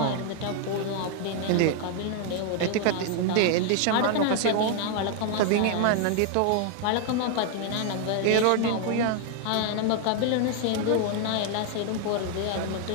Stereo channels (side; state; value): both; different; correlation 0.00